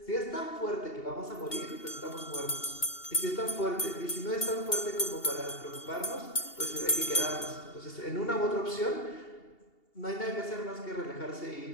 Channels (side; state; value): right; late; 2.8 ms